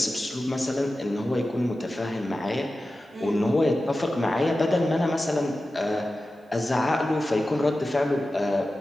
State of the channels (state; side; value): normal; both; correlation 0.94